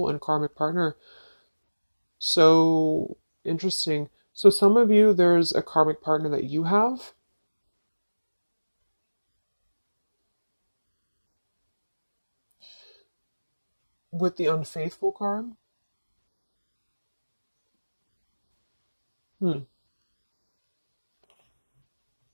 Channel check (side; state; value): both; inverted; correlation -1.00